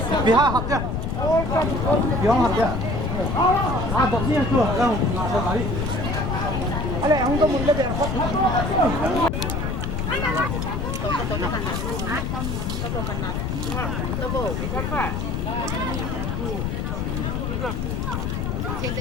Vì hai hộp chưa? Vì không hộp chưa? Hộp riêng chưa? Đâu? Hộp đấy. Ở đây không có một cái đẹp hộp. Che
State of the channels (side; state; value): left; noise; rumble, 1 dB below the sound